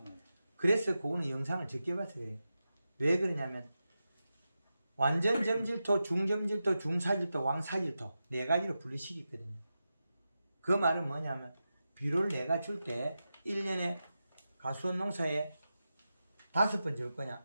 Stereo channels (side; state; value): both; inverted; correlation -0.91